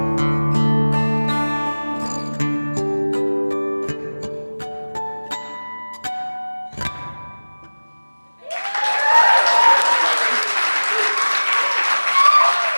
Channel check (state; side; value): inverted; both; correlation -1.00